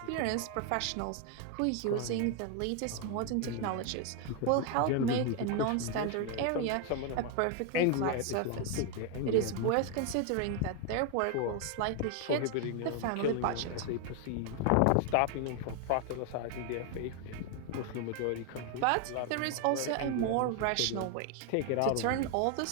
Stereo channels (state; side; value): different; both; correlation 0.01